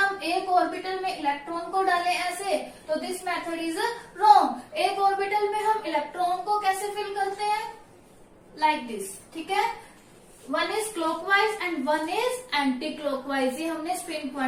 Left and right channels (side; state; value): both; identical; correlation 1.00